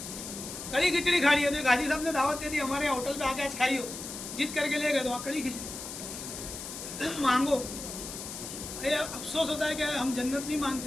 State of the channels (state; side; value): noise; left; hiss, 9 dB below the sound